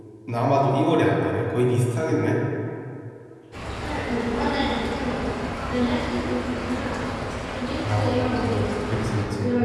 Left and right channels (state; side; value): identical; both; correlation 1.00